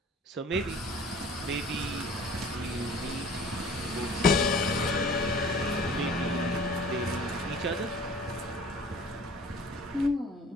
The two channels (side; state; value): both; normal; correlation 0.47